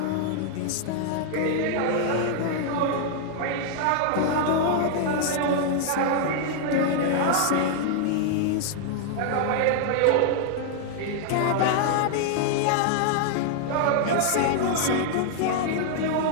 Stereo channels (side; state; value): both; different; correlation -0.01